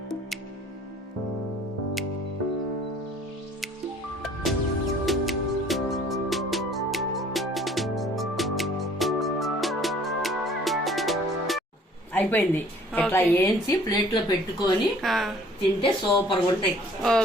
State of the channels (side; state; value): both; normal; correlation 0.55